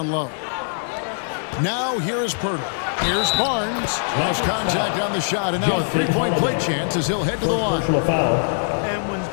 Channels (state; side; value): silent; right; digital silence